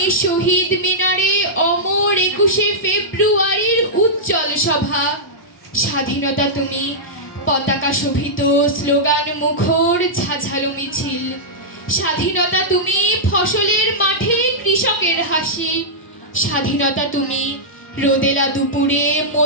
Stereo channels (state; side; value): normal; both; correlation -0.11